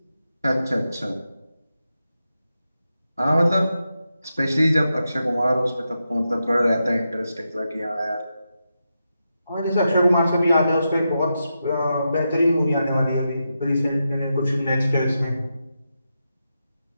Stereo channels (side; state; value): both; inverted; correlation -0.87